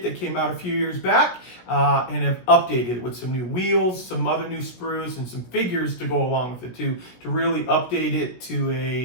that came out a few years back and have updated it with some new wheels, some other new sprues, and some figures to go along with it to really update it to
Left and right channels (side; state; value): right; late; 16 ms